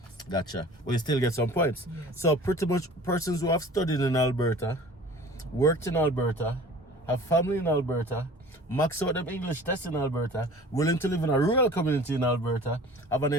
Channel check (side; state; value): both; normal; correlation 0.44